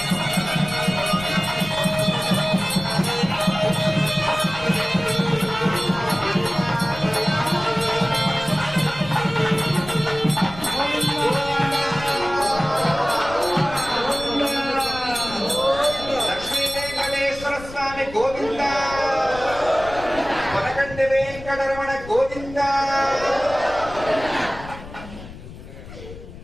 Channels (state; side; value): noise; left; rumble, 15 dB below the sound